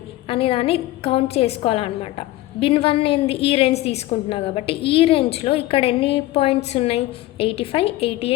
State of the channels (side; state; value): right; quieter; 16.9 dB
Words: అనే దాన్ని కౌంట్ చేసుకోవాలన్నమాట. బిన్ 1 ఏంది? ఈ రేంజ్ తీసుకుంటున్నా కాబట్టి ఈ రేంజ్లో ఇక్కడ ఎన్ని పాయింట్స్ ఉన్నాయి? 85,